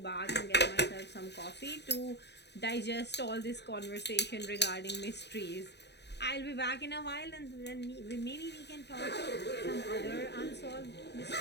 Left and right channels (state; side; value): late; right; 0.50 ms